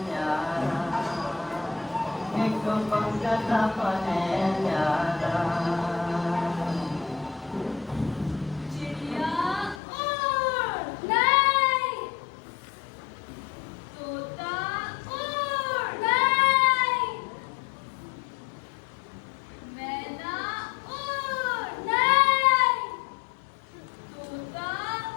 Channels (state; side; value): drops out; right; at 9.8 s